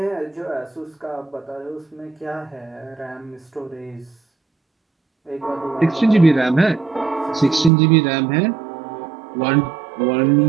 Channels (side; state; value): left; drops out; at 7.7 s